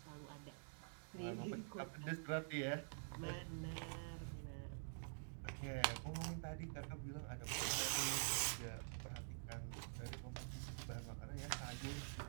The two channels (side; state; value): left; silent; digital silence